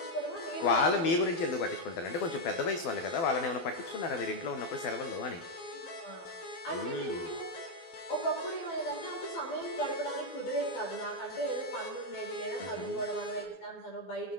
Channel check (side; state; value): right; late; 12 ms